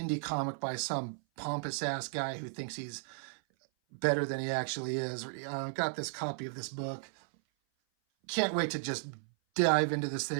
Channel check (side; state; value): left; silent; 55 dB below the other